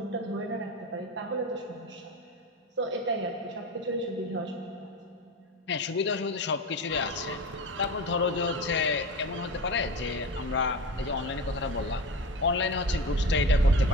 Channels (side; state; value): both; normal; correlation 0.27